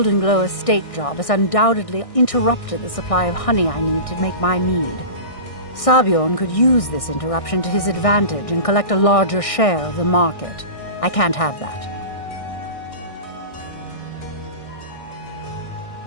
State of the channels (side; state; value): right; late; 1.6 ms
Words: Glow estate job has undoubtedly interrupted the supply of honey I need to make my mead. Sabjorn could use this interruption to his advantage and collect a larger share of the market. I can't have that.